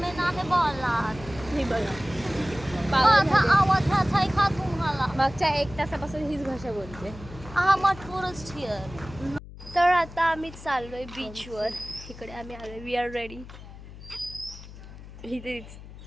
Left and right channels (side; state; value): left; noise; hum, 15 dB below the sound